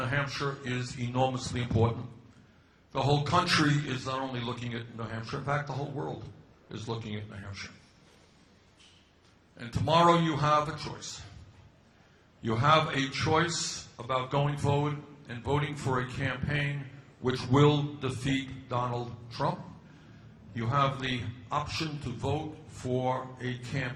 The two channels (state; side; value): identical; both; correlation 1.00